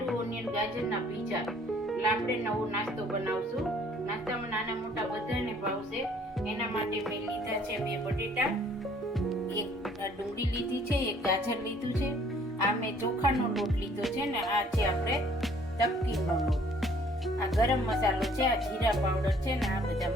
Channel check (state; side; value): normal; both; correlation 0.58